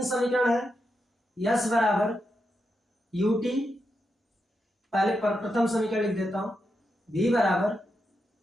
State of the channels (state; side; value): normal; both; correlation 0.85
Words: समीकरण है, यस बराबर यू टी, पहले प्रथम समीकरण लिख देता हूं, v बराबर